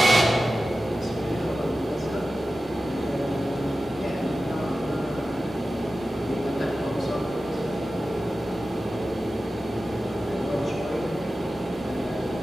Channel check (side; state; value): both; normal; correlation 0.94